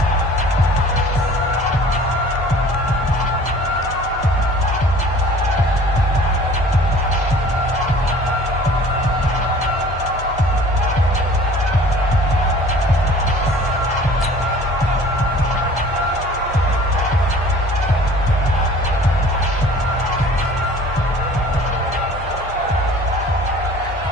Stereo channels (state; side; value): normal; both; correlation 0.48